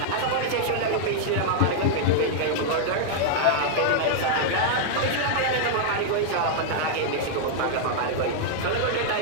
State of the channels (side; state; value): both; different; correlation -0.01